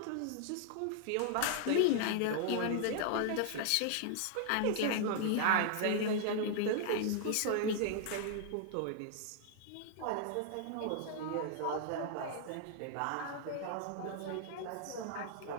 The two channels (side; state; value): both; different; correlation 0.00